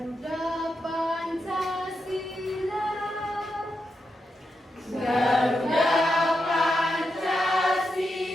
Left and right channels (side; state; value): both; normal; correlation 0.86